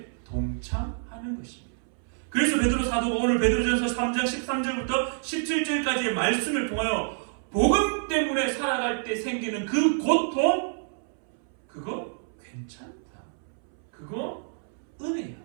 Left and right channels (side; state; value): left; silent; 60 dB below the other